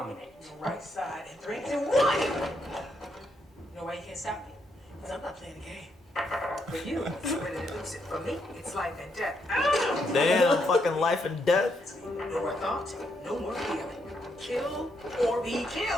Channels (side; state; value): both; normal; correlation 0.78